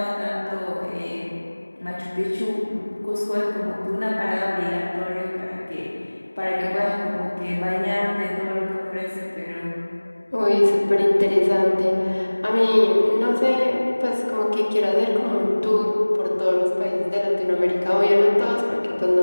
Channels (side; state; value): both; inverted; correlation -1.00